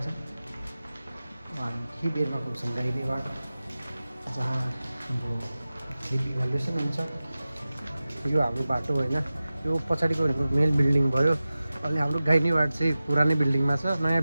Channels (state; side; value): inverted; both; correlation -0.95